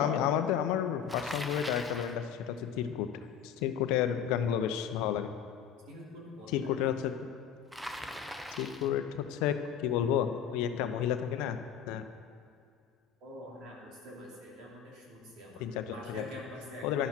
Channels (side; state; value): right; quieter; 8.4 dB